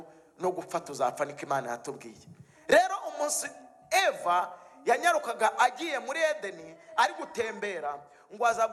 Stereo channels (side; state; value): both; identical; correlation 1.00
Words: no gupfa tuzapfa, niko Imana yatubwiye. Rero umunsi Eva yanyarukaga agiye muri Edeni ari gutembera, ngo aza